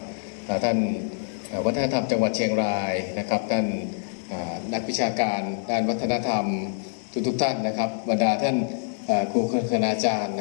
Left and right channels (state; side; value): silent; right; 60 dB below the other